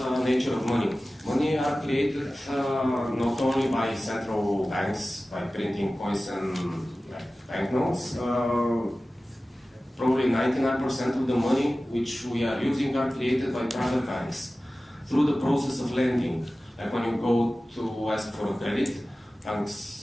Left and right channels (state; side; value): normal; both; correlation 0.96